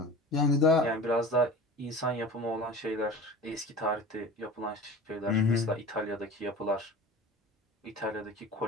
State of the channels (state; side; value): normal; both; correlation 0.37